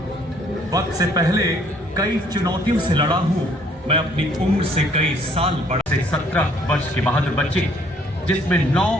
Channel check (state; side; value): normal; both; correlation 0.62